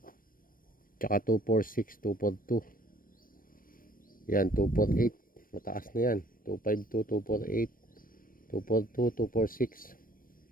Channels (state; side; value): late; right; 0.41 ms